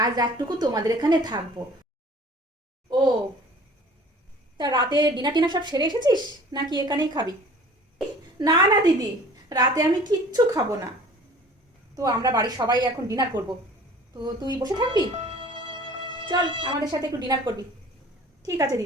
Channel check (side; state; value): both; normal; correlation 0.48